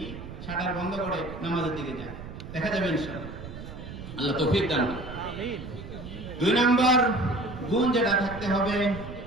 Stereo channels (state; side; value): noise; right; rumble, 11 dB below the sound